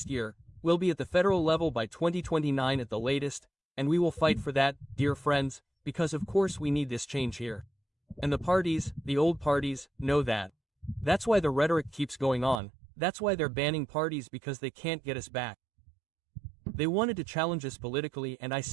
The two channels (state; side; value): drops out; left; at 12.6 s